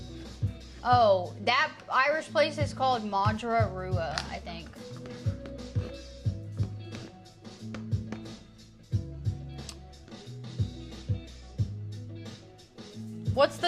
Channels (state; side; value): identical; both; correlation 1.00